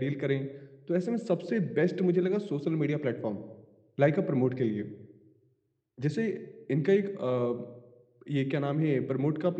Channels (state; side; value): identical; both; correlation 1.00